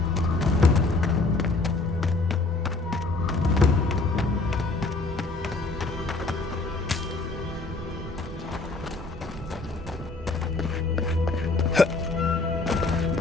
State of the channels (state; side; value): quieter; right; 3.4 dB